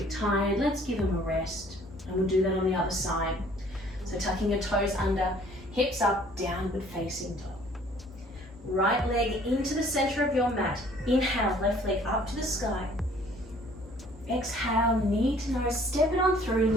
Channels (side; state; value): both; normal; correlation 0.56